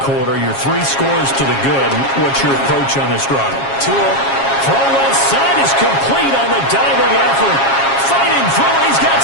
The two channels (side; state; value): right; late; 7.3 ms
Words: Your 3 scores to the good. What's your approach on this drive? Throw left side is complete on the diving effort. Fighting through it. He's got